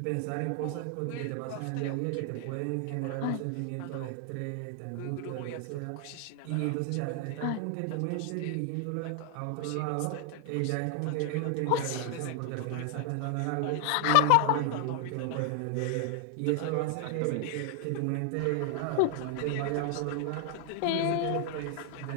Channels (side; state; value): both; different; correlation 0.00